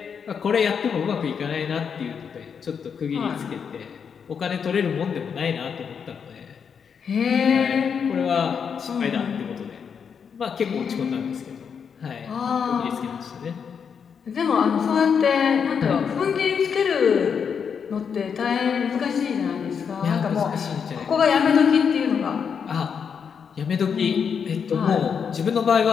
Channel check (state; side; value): quieter; right; 6.8 dB